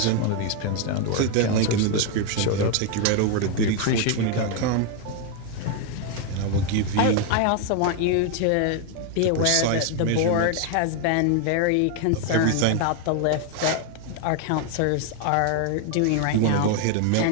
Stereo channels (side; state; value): both; different; correlation 0.01